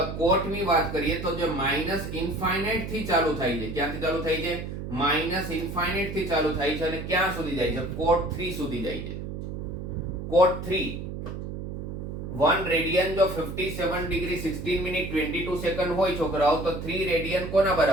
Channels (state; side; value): noise; right; hum, 7 dB below the sound